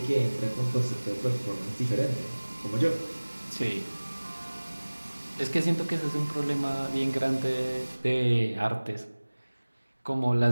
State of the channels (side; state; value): both; inverted; correlation -1.00